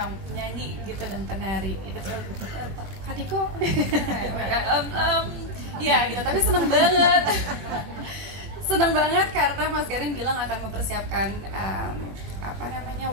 nyanyi gitu dan penari itu tuh Kadiko ya gitu. Tapi seneng banget karena Mas Garin bilang akan mempersiapkan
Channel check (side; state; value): left; late; 21 ms